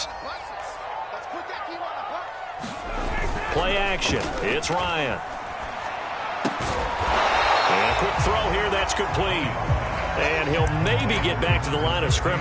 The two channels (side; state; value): both; identical; correlation 1.00